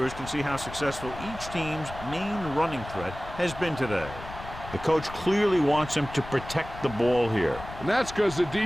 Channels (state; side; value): noise; left; rumble, 13 dB below the sound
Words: can see how successful each team's main running threat has been today. The coach clearly wants him to protect the ball here. And that's because the